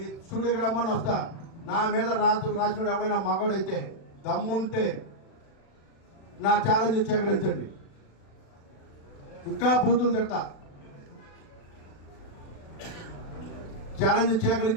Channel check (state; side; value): late; right; 36 ms